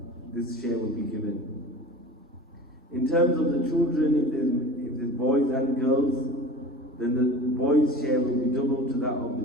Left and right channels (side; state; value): both; normal; correlation 0.37